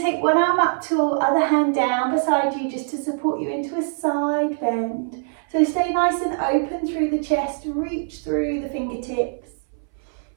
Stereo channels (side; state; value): left; silent; 60 dB below the other